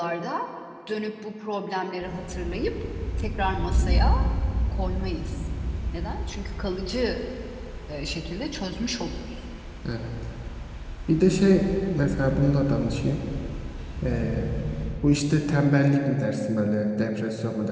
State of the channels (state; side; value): identical; both; correlation 1.00